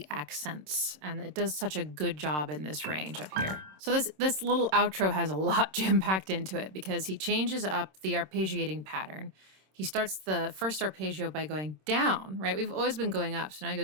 accents, and it does such a good job in this range up here. So this little outro has a lot jam-packed into it because he changes up the arpeggiating pattern. He starts the first arpeggio by going down, right? We've always been going up, so now he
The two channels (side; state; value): left; late; 26 ms